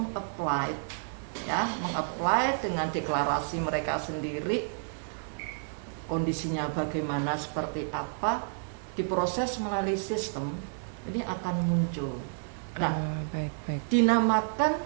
dengan deklarasi mereka sendiri, kondisinya bagaimana, seperti apa, diproses melalui sistem, ini akan muncul. Nah, baik.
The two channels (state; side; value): silent; left; digital silence